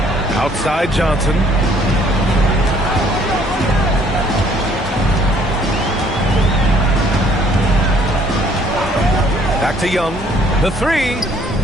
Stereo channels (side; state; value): both; normal; correlation 0.61